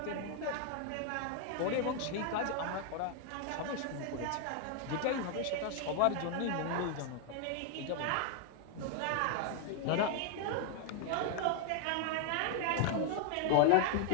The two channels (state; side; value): different; both; correlation 0.00